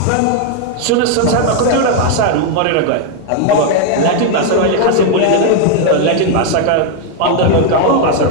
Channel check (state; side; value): different; both; correlation 0.01